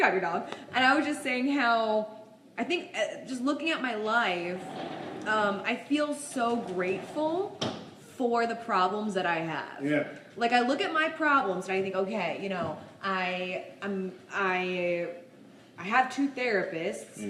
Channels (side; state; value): both; identical; correlation 1.00